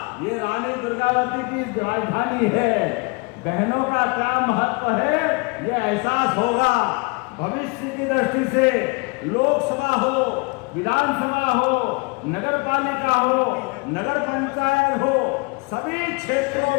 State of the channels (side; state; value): right; quieter; 29.0 dB